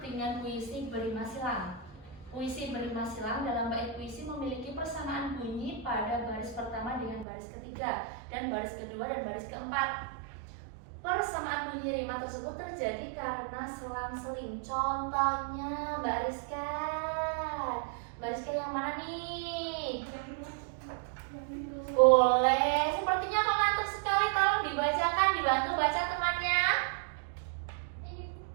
dengan puisi berima silang. Puisi berima silang dalam bait puisi memiliki persamaan bunyi pada baris pertama dengan baris ketiga dan baris kedua dan baris keempat. Persamaan bunyi rima tersebut terjadi karena selang-seling. Contohnya Mbak Rizka. Mbak Rizka yang mana nih? Boleh. Sepertinya mengantuk sekali. Tolong dibacakan, dibantu baca temannya.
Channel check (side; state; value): left; drops out; at 7.2 s